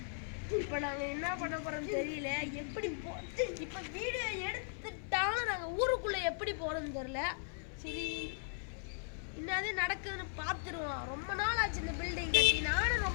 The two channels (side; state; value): right; silent; 53 dB below the other